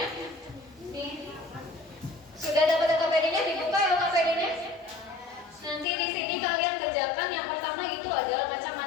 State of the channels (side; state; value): right; drops out; at 5.9 s